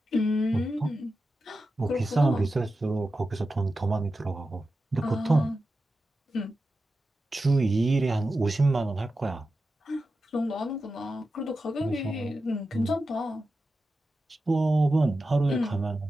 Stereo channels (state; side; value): normal; both; correlation 0.91